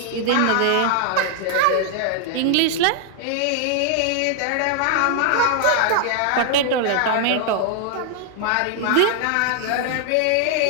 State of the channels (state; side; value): different; both; correlation 0.00